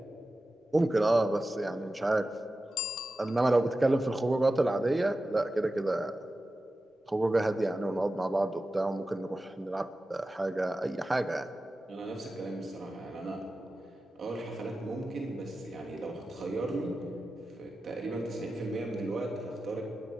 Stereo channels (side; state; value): both; normal; correlation 0.93